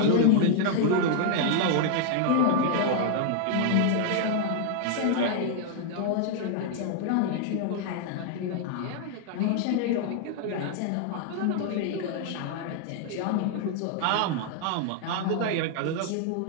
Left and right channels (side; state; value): both; different; correlation 0.00